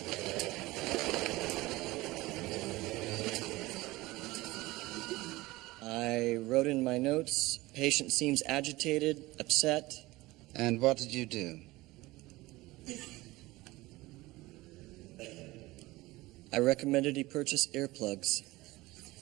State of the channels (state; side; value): quieter; left; 19.9 dB